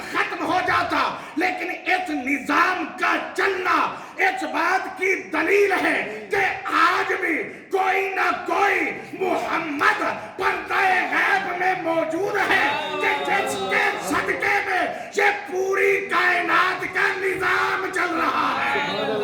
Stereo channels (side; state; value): both; identical; correlation 1.00